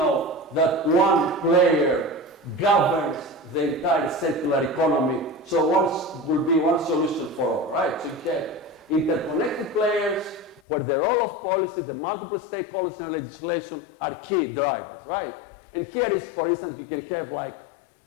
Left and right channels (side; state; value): right; drops out; at 10.6 s